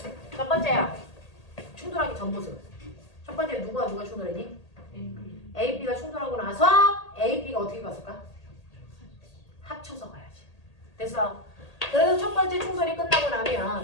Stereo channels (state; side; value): late; right; 1.8 ms